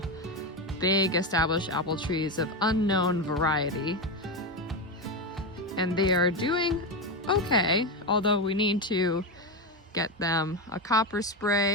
big established apple trees of unknown variety, and they are doing okay, although we need to get them a copper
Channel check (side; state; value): both; normal; correlation 0.13